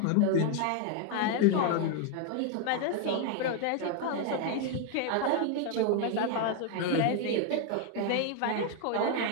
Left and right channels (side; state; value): both; different; correlation 0.00